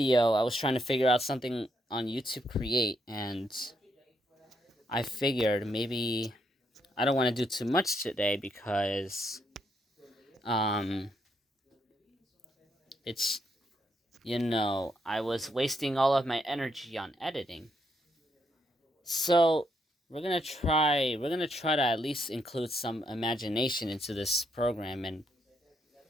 I was trying to figure out something on YouTube Create, and I figured maybe I don't want to do too much today because it's I was wasting all of my energy on editing. So we're gonna try to at least include some imagination into this program and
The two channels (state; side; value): normal; both; correlation 0.77